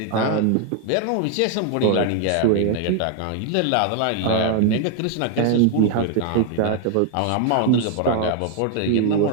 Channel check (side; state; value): both; different; correlation 0.00